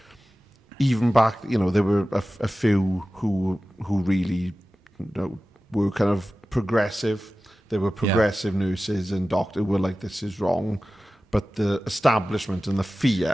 Even back, there were a few who really were kind of progressive. There were progressive nurses and doctors who were like, this is wrong. But the establishment and the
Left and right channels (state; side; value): normal; both; correlation 0.95